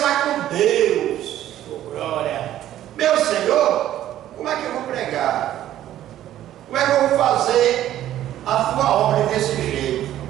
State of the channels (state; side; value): quieter; left; 12.6 dB